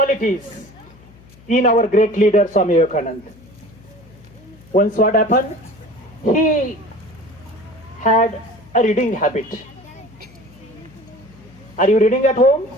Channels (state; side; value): noise; left; hum, 25 dB below the sound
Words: in our great leader Swami Vivekananda. Once what happened? He had a reading habit. Are you reading at home?